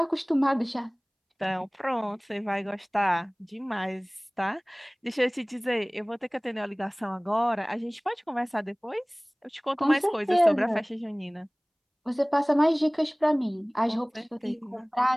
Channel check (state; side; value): identical; both; correlation 1.00